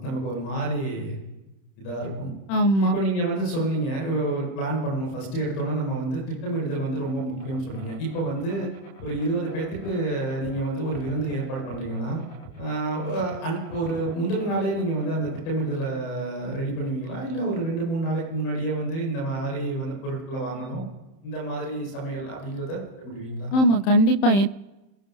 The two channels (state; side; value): late; right; 30 ms